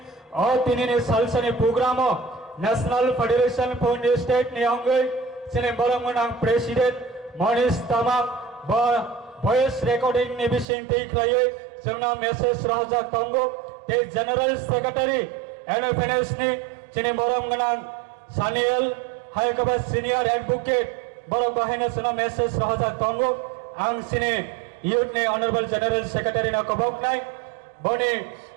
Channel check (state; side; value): drops out; left; at 10.7 s